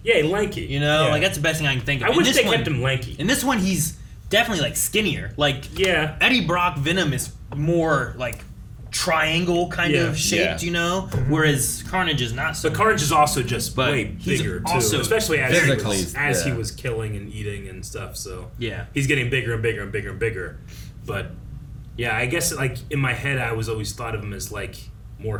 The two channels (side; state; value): both; identical; correlation 1.00